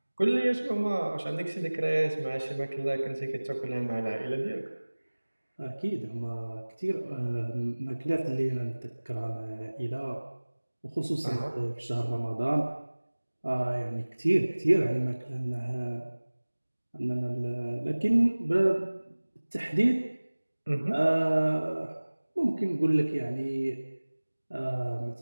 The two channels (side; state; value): both; inverted; correlation -1.00